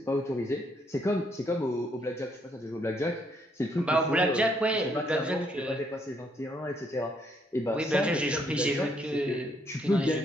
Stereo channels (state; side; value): normal; both; correlation 0.71